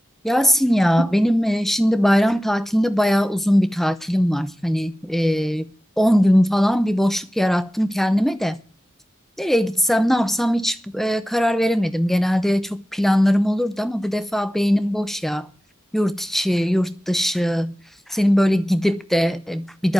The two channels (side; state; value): both; normal; correlation 0.95